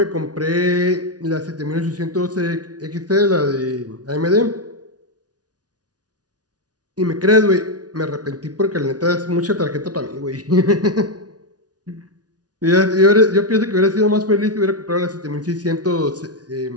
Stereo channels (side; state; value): left; late; 0.69 ms